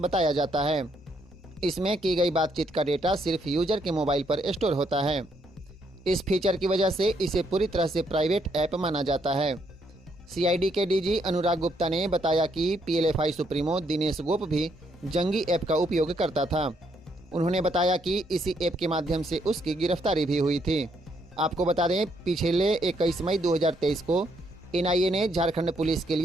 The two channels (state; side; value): normal; both; correlation 0.73